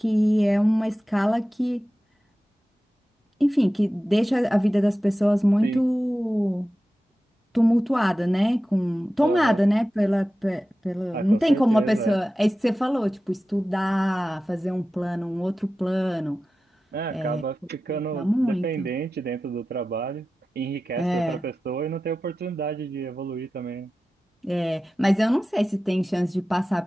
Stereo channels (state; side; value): normal; both; correlation 0.94